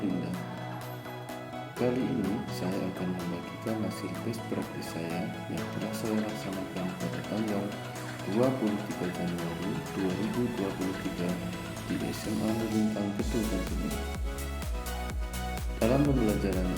Kali ini saya akan membagikan hasil best practice saya yang telah saya laksanakan pada tanggal 23 Januari 2023 di SMA Melintang Teduh Tentunya. Dalam pembelajaran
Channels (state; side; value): identical; both; correlation 1.00